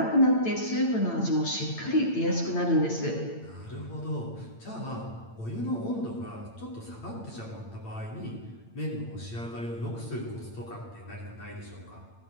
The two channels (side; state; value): right; late; 8.8 ms